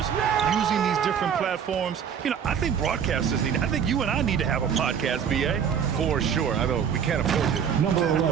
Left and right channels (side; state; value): left; quieter; 7.8 dB